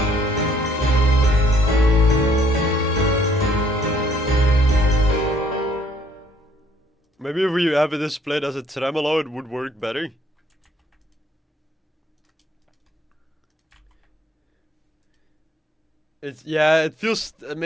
Maybe if we have this played as a tremolo, it would work better. Yeah, it feels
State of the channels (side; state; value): both; normal; correlation 0.65